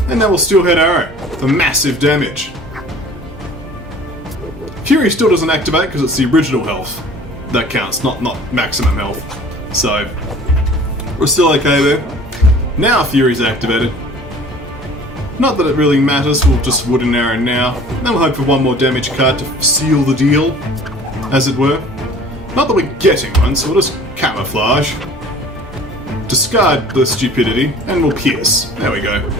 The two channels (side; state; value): both; normal; correlation 0.47